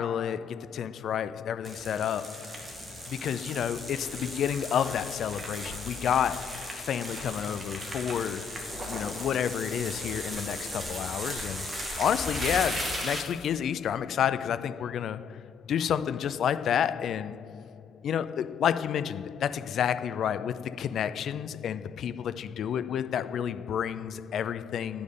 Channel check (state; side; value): quieter; right; 7.2 dB